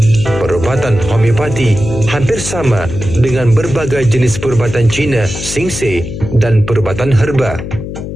Perubatan homeopati hampir sama dengan berbagai jenis perubatan Cina, Singse dan perubatan herba.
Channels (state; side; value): noise; left; hum, 8 dB below the sound